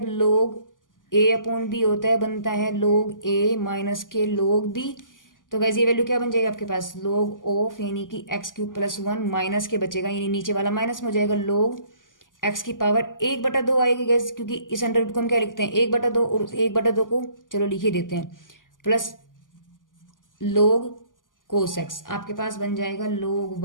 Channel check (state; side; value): late; right; 0.88 ms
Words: लोग ए अपॉन बी होता है बनता है लोग ए माइनस के लोग बी। तो गाइज ये वैल्यू क्या बन जाएगा आपके पास, लोग ऑफ यानी कि एक्स क्यूब प्लस 1 माइनस के बचेगा, यानी नीचे वाला माइनस में हो जाएगा, लोग एक्स की पावर 1/2 आएगी गाइज, क्योंकि इस अंडर रूट को हम क्या लिखते हैं 1/2, और 1/2 को चलो लिख ही देते हैं, प्लस लोग कोस एक्स। आपके पास बन जाएगा log